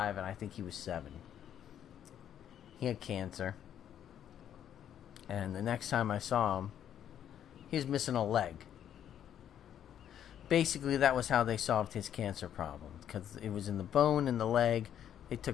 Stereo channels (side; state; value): right; quieter; 9.9 dB